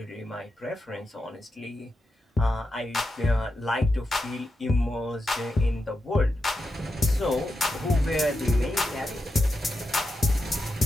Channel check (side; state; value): both; normal; correlation 0.88